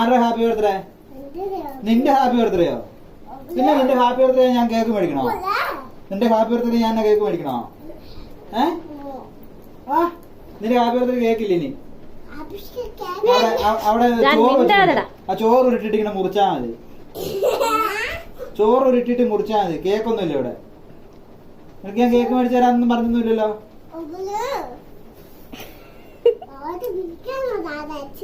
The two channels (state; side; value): identical; both; correlation 1.00